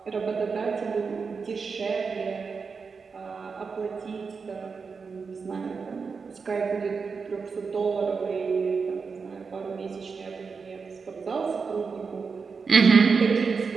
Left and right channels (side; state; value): left; quieter; 5.2 dB